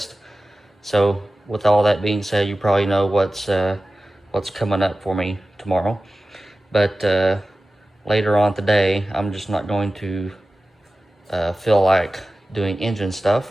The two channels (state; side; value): normal; both; correlation 0.95